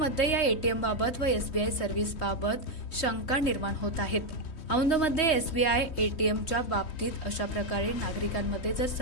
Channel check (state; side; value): late; right; 3.2 ms